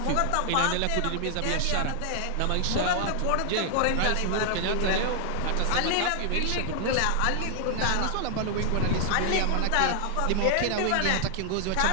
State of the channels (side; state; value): both; different; correlation 0.00